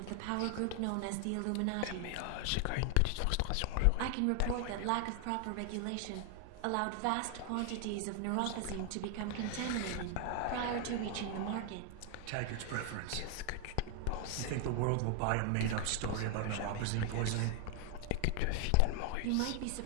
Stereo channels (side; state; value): both; different; correlation 0.00